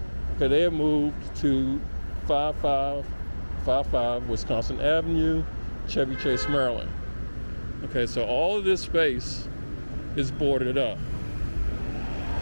Okay, they have moved to 5555 Wisconsin Avenue, Chevy Chase, Maryland. Okay, so all of this space is boarded up.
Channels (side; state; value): both; inverted; correlation -1.00